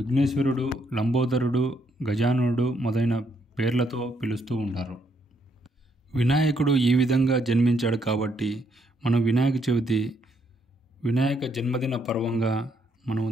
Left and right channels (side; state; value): both; normal; correlation 0.73